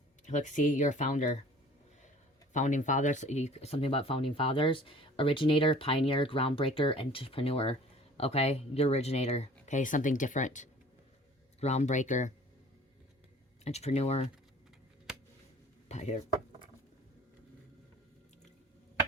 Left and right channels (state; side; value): normal; both; correlation 0.49